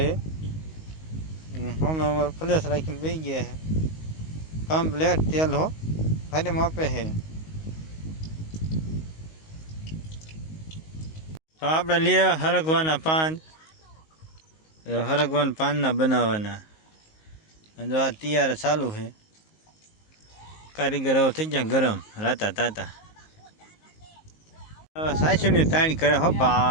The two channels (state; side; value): late; right; 19 ms